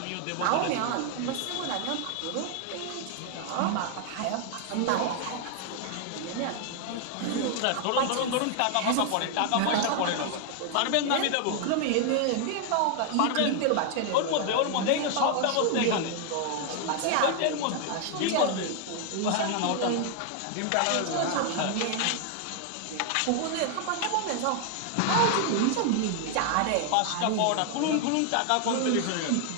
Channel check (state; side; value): different; both; correlation 0.00